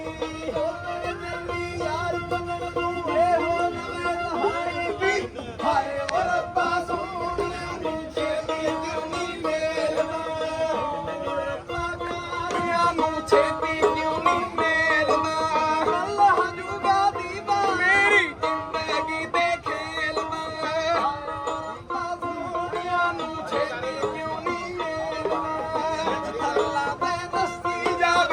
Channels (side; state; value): both; identical; correlation 1.00